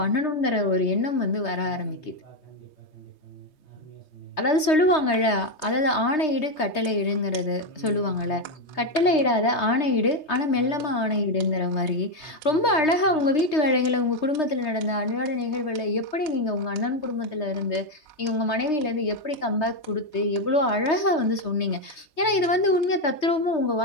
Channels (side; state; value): right; late; 3.2 ms